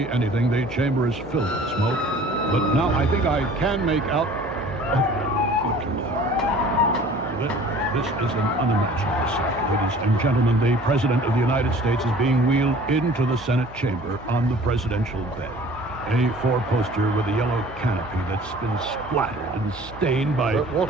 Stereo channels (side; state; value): both; normal; correlation 0.48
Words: anything. The chamber is filled with smoke. But now I think I can make out... Oh, good Lord. This is an unimaginable sight. Ladies and gentlemen, the President of the United States is being wheeled into the Senate chamber on the presidential bed. A four-poster with a yellow canopy that's been splattered and stained by...